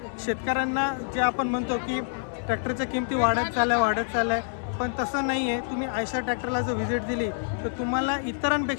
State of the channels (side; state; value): right; silent; 60 dB below the other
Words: शेतकऱ्यांना जे आपण म्हणतो की ट्रॅक्टरच्या किमती वाढत चालल्या, पण तसं नाही आहे. तुम्ही आयशर ट्रॅक्टरला जर व्हिजिट दिली तर तुम्हाला